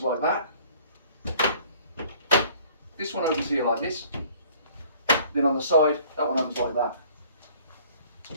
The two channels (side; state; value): both; inverted; correlation -0.55